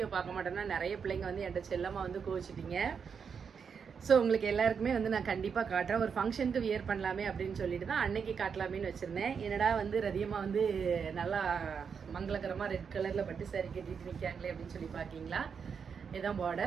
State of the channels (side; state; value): left; quieter; 6.4 dB